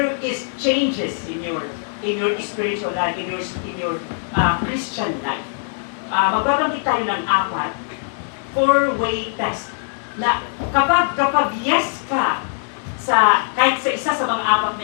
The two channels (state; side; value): silent; right; digital silence